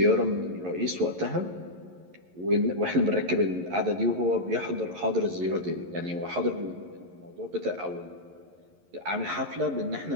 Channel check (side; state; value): left; late; 11 ms